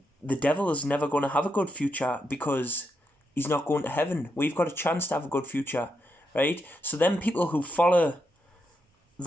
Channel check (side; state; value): both; normal; correlation 0.83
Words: the devil is never going to have a good future because he's not going to heaven. We've got a chance to have a good future, right? So then people who follow